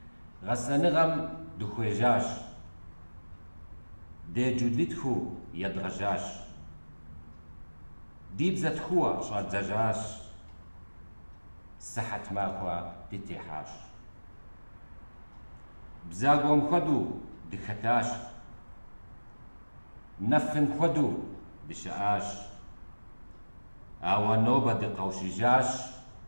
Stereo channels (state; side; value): inverted; both; correlation -1.00